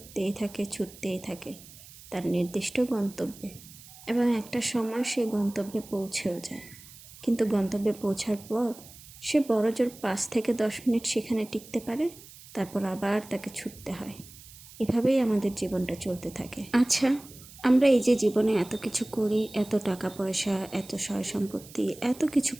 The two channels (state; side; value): noise; right; hiss, 19 dB below the sound